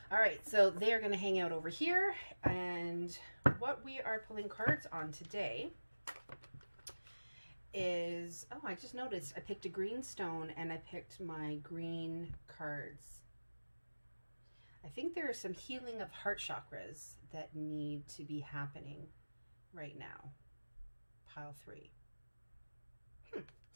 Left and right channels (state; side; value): inverted; both; correlation -1.00